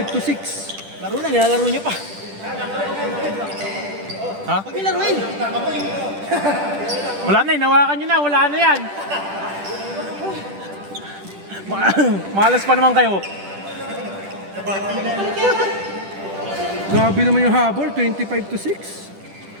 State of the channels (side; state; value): left; late; 10 ms